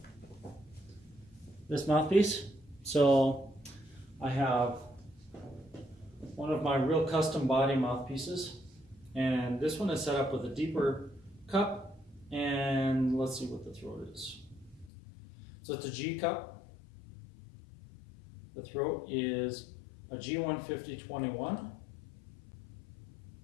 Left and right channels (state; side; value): drops out; right; at 14.9 s